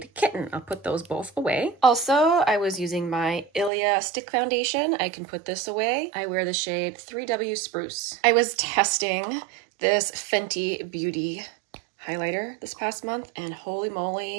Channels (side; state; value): left; drops out; at 3.7 s